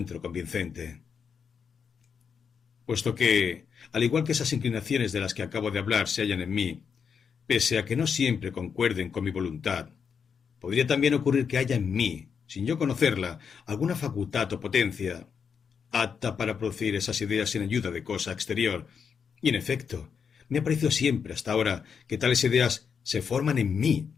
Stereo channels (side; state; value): right; quieter; 6.6 dB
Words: convincente. Puesto que, al igual que esas inclinaciones de las que acabo de hablar se hallan en mí, pese a que no siempre concuerden con mi voluntad, podría también ocurrir que haya en mí, sin yo conocerla, alguna facultad o potencia apta para producir esas ideas sin ayuda de cosa exterior. Y en efecto, me ha parecido siempre hasta ahora que tales ideas se forman en mí,